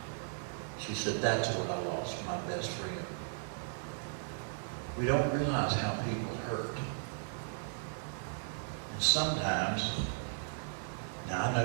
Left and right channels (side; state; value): left; silent; digital silence